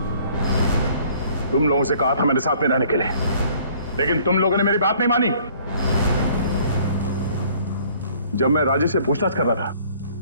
तुम लोगों से कहा था मेरे साथ में रहने के लिए, लेकिन तुम लोगों ने मेरी बात नहीं मानी। जब मैं राजेश से पूछताछ कर रहा था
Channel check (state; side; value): inverted; both; correlation -0.57